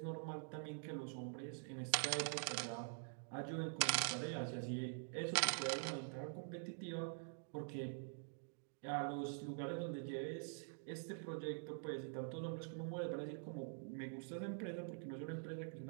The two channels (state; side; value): silent; left; digital silence